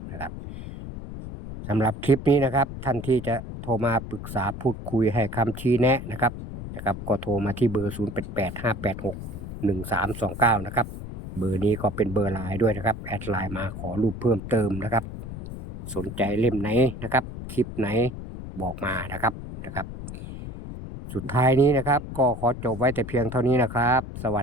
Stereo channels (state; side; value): noise; left; rumble, 9 dB below the sound